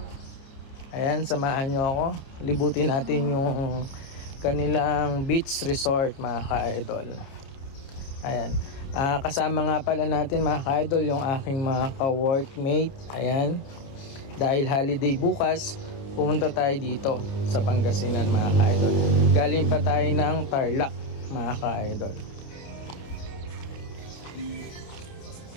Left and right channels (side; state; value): right; late; 30 ms